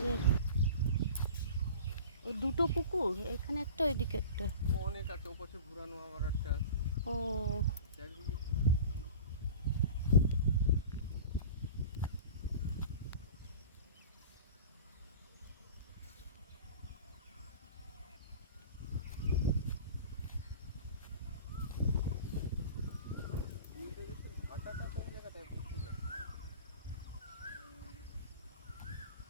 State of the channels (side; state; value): both; inverted; correlation -0.38